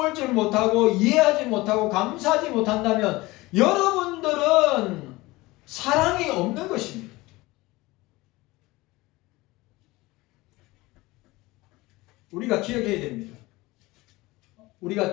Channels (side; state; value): right; quieter; 20.7 dB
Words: 줄 못하고 이해하지 못하고 감사하지 못한다면 여러분들은 사랑이 없는 것입니다. 우리가 기억해야 됩니다. 우리가